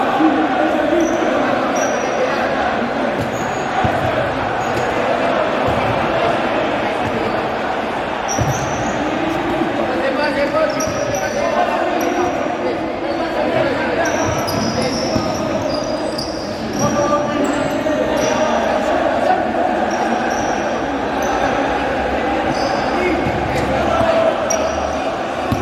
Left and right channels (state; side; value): identical; both; correlation 1.00